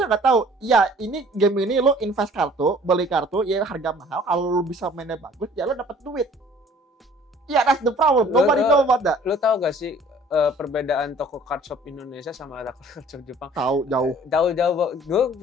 nggak tahu. Ya ini game ini lo invest kartu, beli kartu, ya harga mahal. Kalau lo bisa mainnya bagus, ya lo dapat duit. Ya that's the problem. Nobody know about that. Lo tahu gak sih perbedaan toko card shop Indonesia sama toko card shop Jepang? Tahu jauh. Gue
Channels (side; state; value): both; normal; correlation 0.52